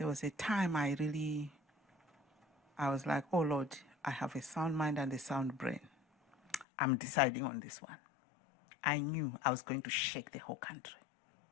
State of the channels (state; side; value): drops out; right; at 6.7 s